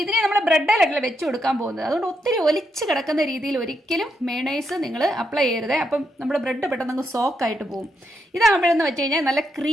ഇതിനെ നമ്മൾ ബ്രെഡിലല്ല വെച്ച് കൊടുക്കാൻ പോകുന്നത്. അതുകൊണ്ട് ഒത്തിരി ഒലിച്ച് കിടക്കുന്ന രീതിയിൽ ഒരിക്കലും മേണേസ് നിങ്ങൾ അപ്ലൈ ചെയ്യരുത്. അപ്പം നമ്മുടെ ബ്രെഡ് പെട്ടെന്ന് അങ്ങ് സോക്കായിട്ട് പോകും. ഇതാകുമ്പോഴെന്ന് വെച്ച് കഴിഞ്ഞാൽ നല്ല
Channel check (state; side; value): normal; both; correlation 0.80